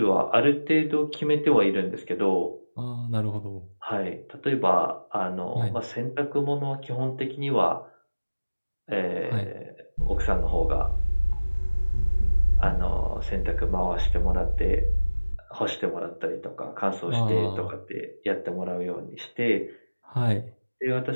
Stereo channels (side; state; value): both; inverted; correlation -1.00